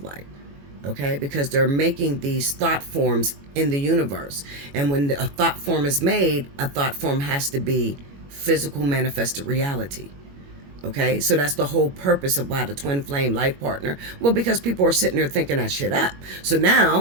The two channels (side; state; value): left; late; 21 ms